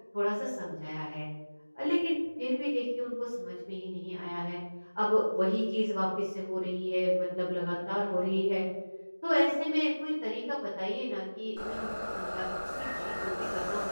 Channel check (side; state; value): both; inverted; correlation -1.00